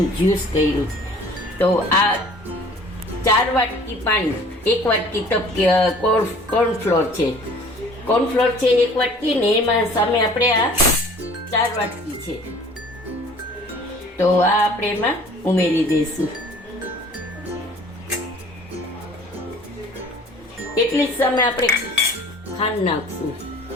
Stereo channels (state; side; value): normal; both; correlation 0.50